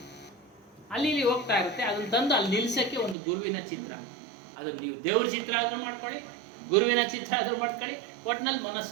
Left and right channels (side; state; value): left; drops out; at 3.2 s